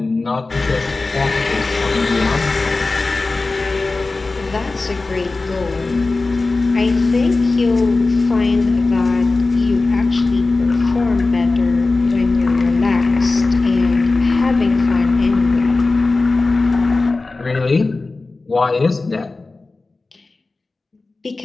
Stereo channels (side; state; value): right; quieter; 3.5 dB